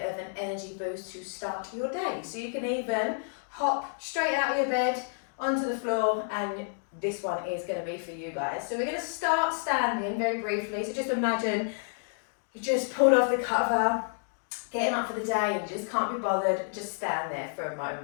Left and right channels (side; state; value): right; silent; digital silence